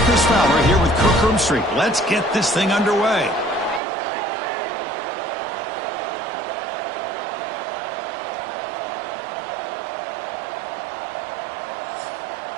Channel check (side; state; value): left; drops out; at 3.8 s